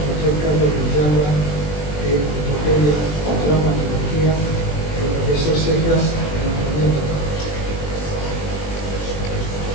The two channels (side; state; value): right; late; 20 ms